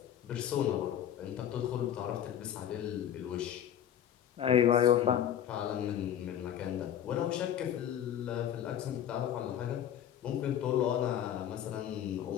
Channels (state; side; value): quieter; right; 10.1 dB